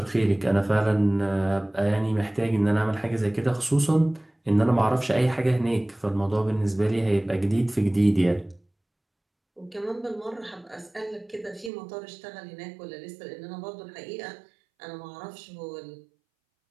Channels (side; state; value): left; drops out; at 11.7 s